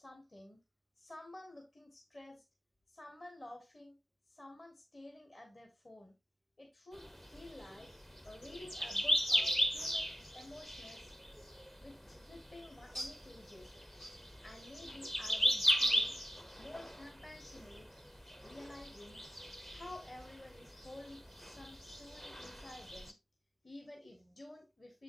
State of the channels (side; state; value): both; normal; correlation 0.92